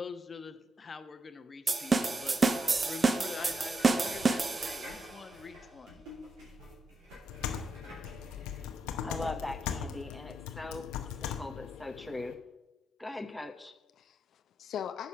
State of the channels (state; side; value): normal; both; correlation 0.83